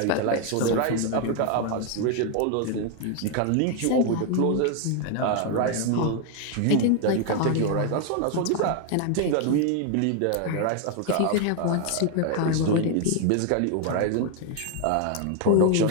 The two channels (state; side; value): different; both; correlation 0.00